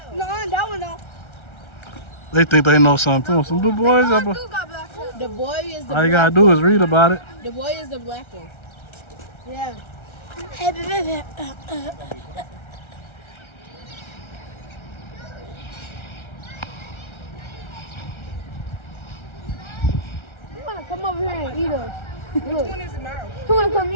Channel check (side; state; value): right; late; 1.3 ms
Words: No, that one don't. They think they know something too. Some good boys. The boy is the All you gotta do is read about it. The boy is the black one. Yeah. He wanna come over here and eat us. Which one is the mouse? He wanna come